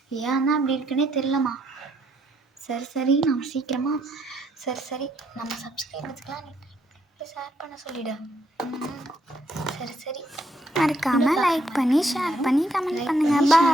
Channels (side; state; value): both; normal; correlation 0.73